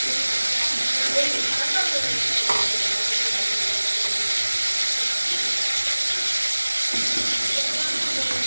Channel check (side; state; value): both; inverted; correlation -1.00